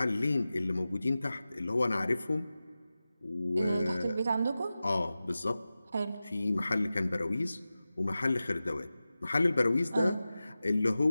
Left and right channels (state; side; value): inverted; both; correlation -0.95